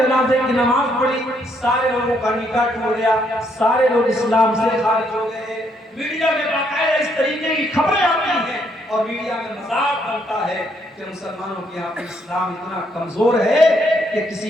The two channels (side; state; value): both; normal; correlation 0.72